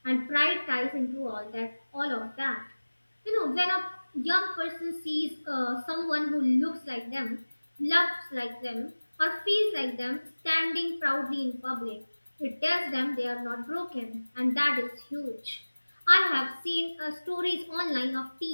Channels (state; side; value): inverted; both; correlation -1.00